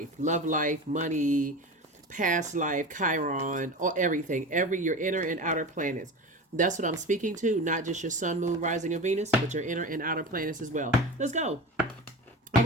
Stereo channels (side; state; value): both; normal; correlation 0.30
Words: Love life, money, past life, Chiron, or everything. Your inner and outer planets. That's what I'm speaking to, not just your sun, moon, rising, and Venus, but your inner and outer planets as well. Let's go. All